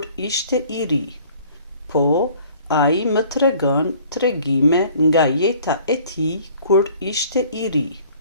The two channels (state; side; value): inverted; both; correlation -0.53